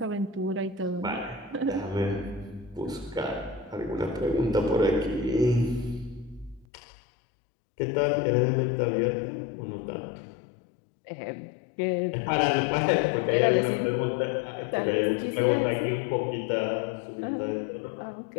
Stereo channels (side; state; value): right; drops out; at 6.7 s